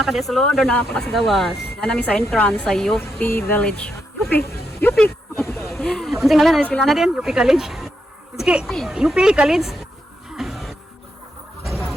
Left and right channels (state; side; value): normal; both; correlation 0.81